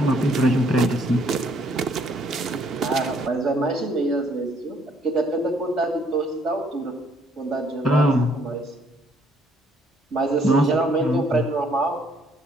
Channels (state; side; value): normal; both; correlation 0.66